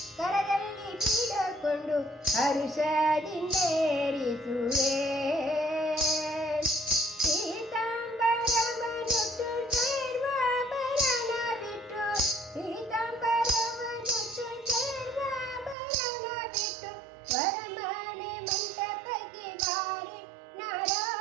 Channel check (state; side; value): drops out; left; at 15.8 s